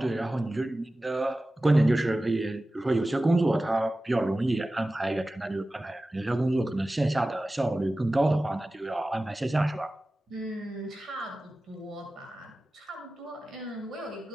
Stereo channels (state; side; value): normal; both; correlation 0.96